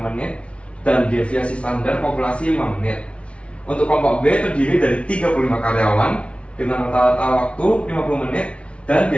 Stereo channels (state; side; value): late; right; 0.061 ms